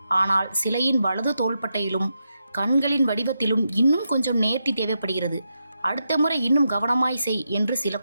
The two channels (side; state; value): both; inverted; correlation -0.86